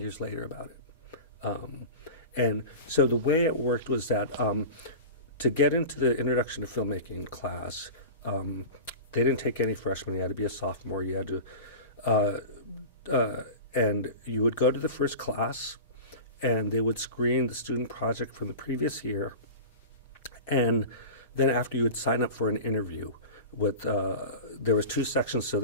later about it. And so the way it worked was that to get into the Introduction to Filmmaking class, they didn't take any freshmen. You had to be a sophomore. You had to, and you would go to the first class, and they would screen the student project from the previous year. And then after, you would sign up for an interview with, there was 2 sections, so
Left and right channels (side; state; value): both; inverted; correlation -0.32